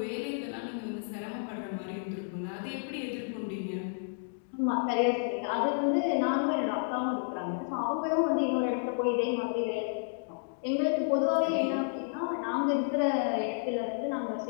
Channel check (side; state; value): right; silent; digital silence